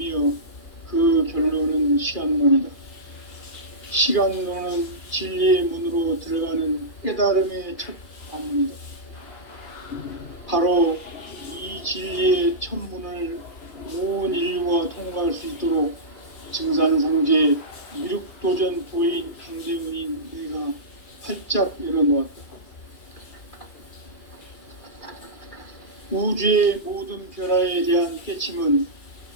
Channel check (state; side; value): late; right; 2.7 ms